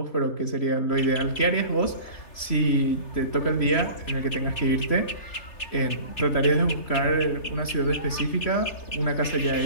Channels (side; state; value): right; late; 3.1 ms